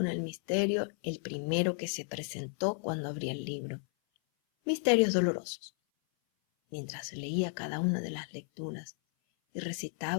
el misterio, el primero que se presentó cuando abrí el libro. Misterios dolorosos. Mientras leía cada una de las lecturas y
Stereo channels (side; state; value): right; silent; 56 dB below the other